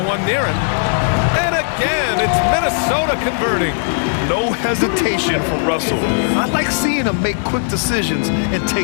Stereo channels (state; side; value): silent; right; 62 dB below the other